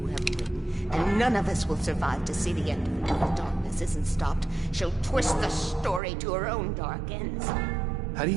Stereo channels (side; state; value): left; drops out; at 6.0 s